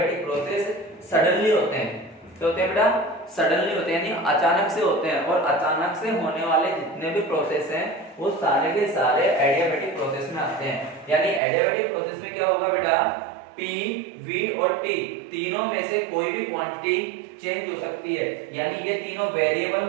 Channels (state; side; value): drops out; left; at 11.4 s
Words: प्रोसेस सडनली होते हैं। तो होते हैं बेटा सडनली होते हैं यानी अचानक से होते हैं। और अचानक से होने वाले जितने भी प्रोसेस हैं वो सारे के सारे एडियाबैटिक प्रोसेस में आते हैं। यानी एडियाबैटिक प्रोसेस में क्या होगा बेटा? P, V और T तीनों में से कोई भी क्वांटिटी चेंज हो सकती है। यानी ये तीनों वेरिएबल